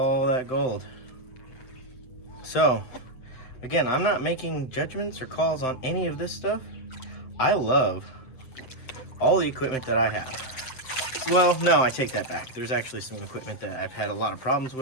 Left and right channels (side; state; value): right; late; 7.7 ms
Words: that gold. So, again, I'm not making judgments or calls on any of this stuff. I love all the equipment that I have. Well, no, I take that back. There's actually some equipment that I've had a lot of problems